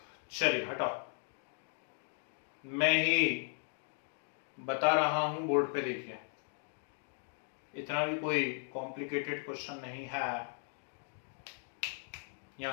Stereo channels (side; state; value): right; silent; 53 dB below the other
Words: चलिए हटाओ, मैं ही बता रहा हूं, बोर्ड पे देखिए। इतना भी कोई कॉम्प्लिकेटेड क्वेश्चन नहीं है।